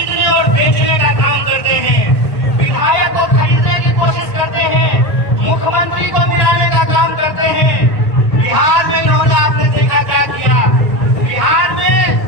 और बेचने का काम करते हैं, विधायक को खरीदने की कोशिश करते हैं, मुख्यमंत्री को मिलाने का काम करते हैं। बिहार में इन्होंने आपने देखा क्या किया, बिहार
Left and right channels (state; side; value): late; right; 1.8 ms